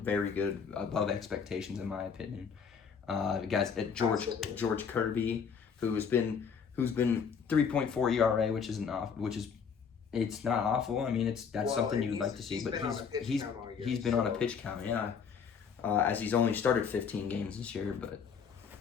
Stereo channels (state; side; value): quieter; right; 6.5 dB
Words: good, above expectations in my opinion. Guys at George Kirby, who's been 3.4 ERA, which is it's not awful. I mean, that's something you would like to see, but he's been on a pitch count, yeah. As he's only started 15 games this year, but